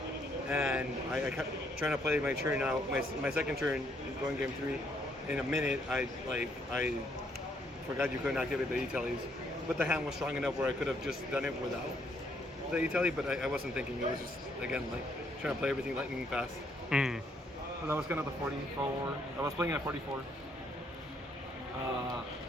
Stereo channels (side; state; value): both; normal; correlation 0.70